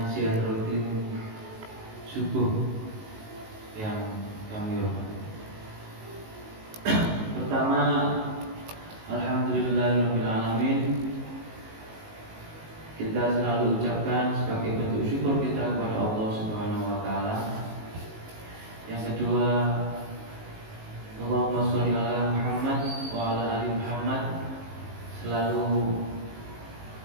pengajian rutin subuh yang kami hormati. Pertama, alhamdulillahirabbil alamin. Kita selalu ucapkan sebagai bentuk syukur kita kepada Allah Subhanahu wa taala. Yang kedua, Allahumma sholli ala Muhammad wa ala ali Muhammad. Selalu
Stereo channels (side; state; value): left; late; 19 ms